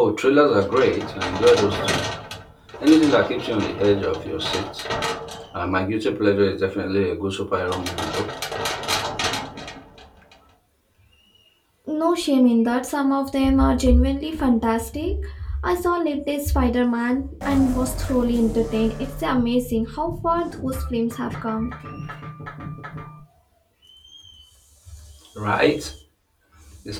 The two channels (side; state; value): both; identical; correlation 1.00